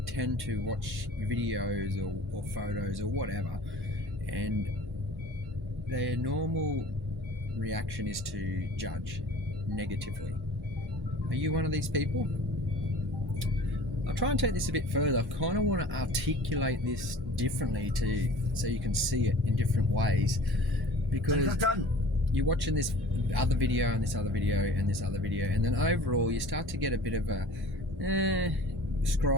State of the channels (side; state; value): both; normal; correlation 0.44